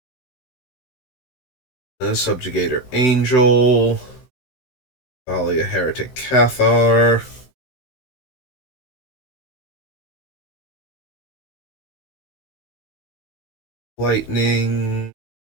Subjugator Angel. Thalia Heretic Cathar. Lightning.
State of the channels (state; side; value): late; right; 16 ms